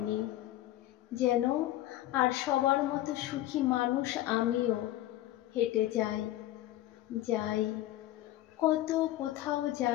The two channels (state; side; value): quieter; right; 14.8 dB